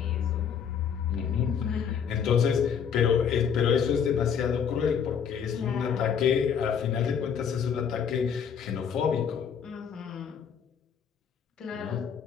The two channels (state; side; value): quieter; right; 7.5 dB